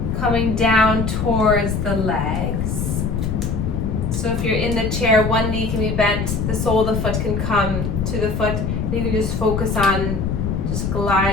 coming down towards the legs. So if you're in the chair, one knee can be bent, the sole of the foot can come to the foot. You can just focus on just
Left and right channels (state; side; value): noise; left; rumble, 1 dB below the sound